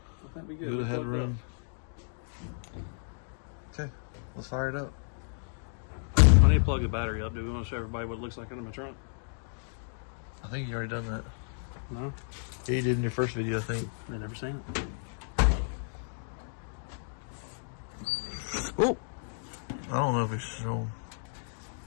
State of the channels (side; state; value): right; silent; digital silence